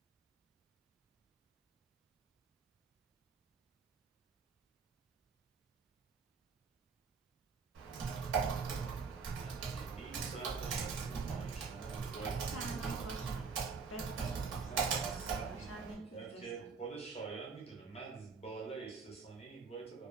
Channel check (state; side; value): quieter; left; 5.2 dB